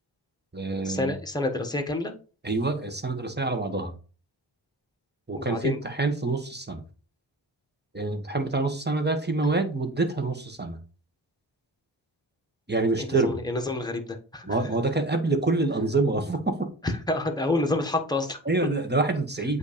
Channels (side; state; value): both; normal; correlation 0.38